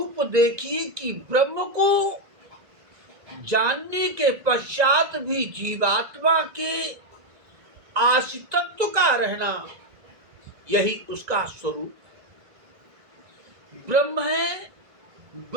देखिए कि ब्रह्म को जानने के पश्चात भी जीवात्मा के आश्रितत्व का रहना, यही उसका स्वरूप। ब्रह्म है,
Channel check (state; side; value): late; left; 1.9 ms